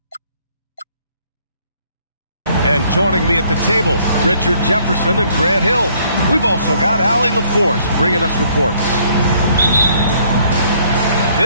And joining me at the table, Richard Jefferson and Grant Hill. We've also got Allie LaForce bringing us reports.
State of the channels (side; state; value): both; inverted; correlation -0.64